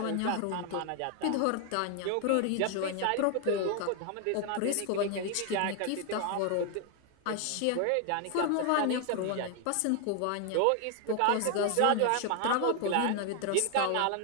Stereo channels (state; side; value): different; both; correlation 0.00